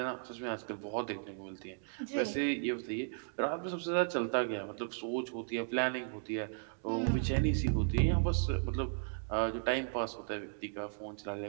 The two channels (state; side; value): silent; left; digital silence